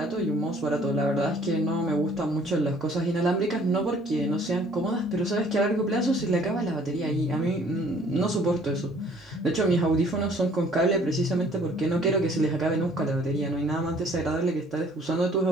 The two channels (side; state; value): both; normal; correlation 0.57